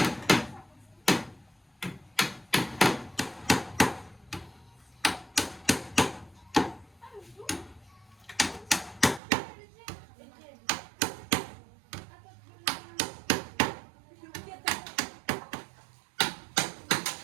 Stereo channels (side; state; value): left; drops out; at 9.2 s